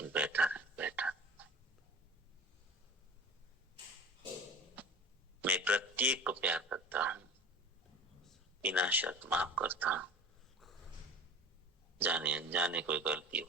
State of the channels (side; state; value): both; normal; correlation 0.38